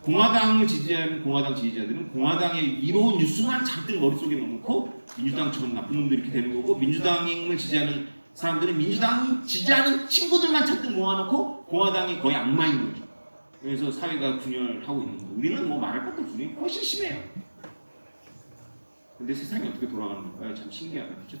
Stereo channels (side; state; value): both; inverted; correlation -1.00